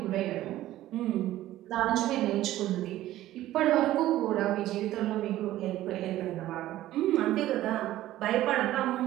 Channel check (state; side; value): quieter; left; 14.6 dB